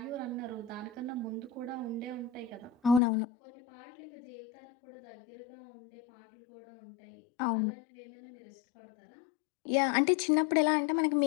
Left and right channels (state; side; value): drops out; right; at 3.0 s